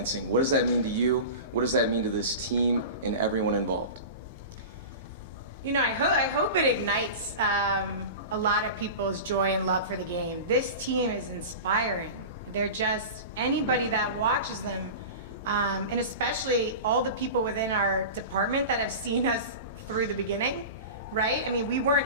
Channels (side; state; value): both; inverted; correlation -0.30